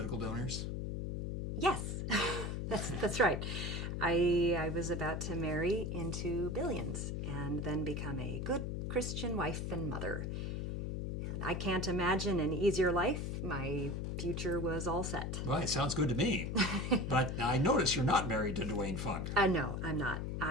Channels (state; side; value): noise; left; hum, 3 dB below the sound